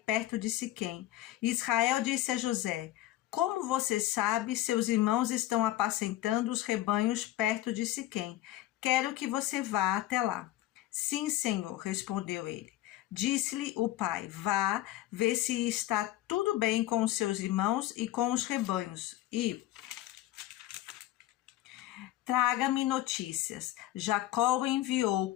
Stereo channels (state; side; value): quieter; right; 15.0 dB